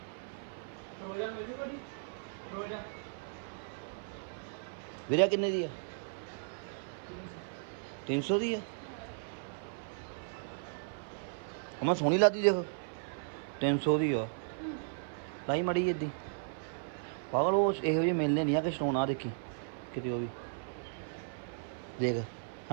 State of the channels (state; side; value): silent; left; 54 dB below the other